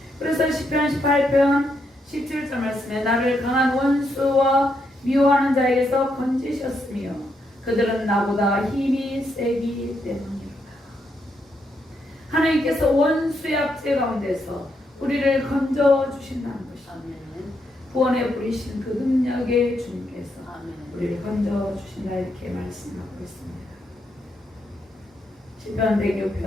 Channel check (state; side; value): normal; both; correlation 0.79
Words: 그래서 시편 18편 17절 말씀에 나를 강한 원수와 미워하는 자에게서 건지셨으며 그들은 나보다 힘이 세기 때문이로다. 하나님께서 원수의 압제 가운데서 우리를 건져 주신다는 것입니다. 구원의 부리신 그 능력의 주님께서 우리를 건져 주신다 이렇게 말씀하고 있습니다. 시편